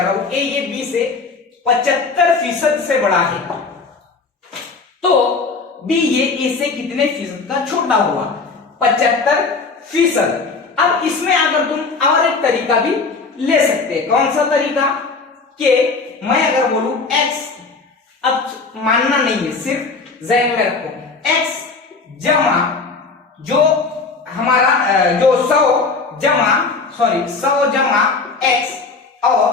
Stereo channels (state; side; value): quieter; right; 4.3 dB